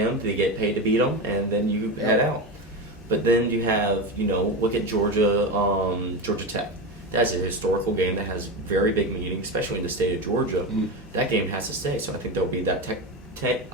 they get paid to beat them, and then you head out. But then you have, look at Georgia Tech. That's a historical game that has very big meaning, especially in the state of Georgia. Mm-hmm. That game has to stay, so I think there'll be that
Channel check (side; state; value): both; normal; correlation 0.19